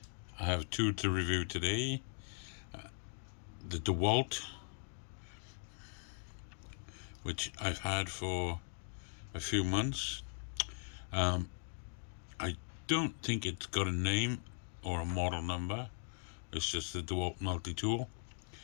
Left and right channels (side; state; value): right; silent; 51 dB below the other